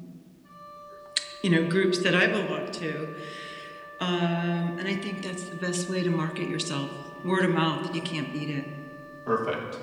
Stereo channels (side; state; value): both; identical; correlation 1.00